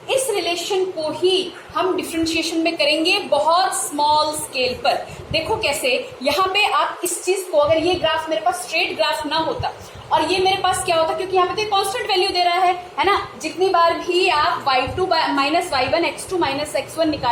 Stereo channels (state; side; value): identical; both; correlation 1.00